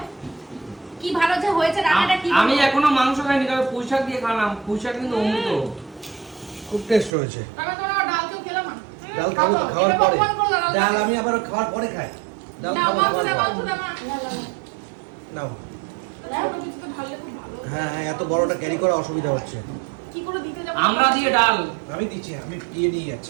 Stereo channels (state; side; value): drops out; left; at 7.1 s